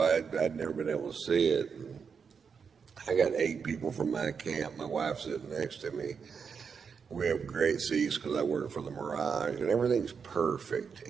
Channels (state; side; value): quieter; left; 6.1 dB